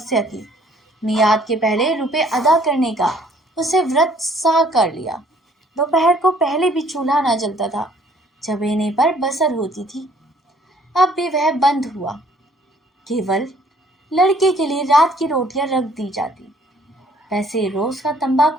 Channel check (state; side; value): normal; both; correlation 0.60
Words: की। मियाद के पहले रुपए अदा करने का उसे व्रत सा कर लिया। दोपहर को पहले भी चूल्हा न जलता था, चबेने पर बसर होती थी। अब भी वह बंद हुआ। केवल लड़के के लिए रात की रोटियां रख दी जाती। वैसे रोज का